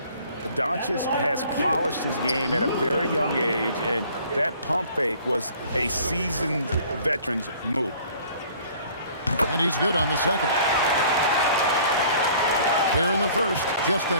Doncic has polished his game at a very young age, and that pump fake was a seasoned veteran's move. And he's good on the second. Here in the first, just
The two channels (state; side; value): inverted; both; correlation -0.53